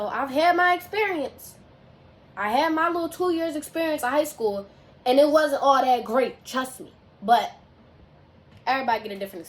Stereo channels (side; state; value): both; identical; correlation 1.00